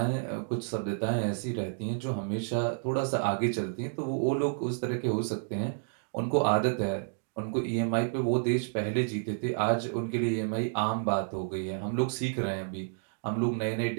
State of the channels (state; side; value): silent; left; digital silence